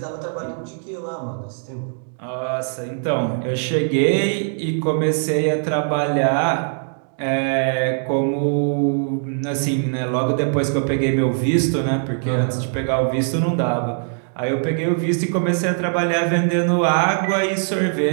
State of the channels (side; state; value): left; silent; 65 dB below the other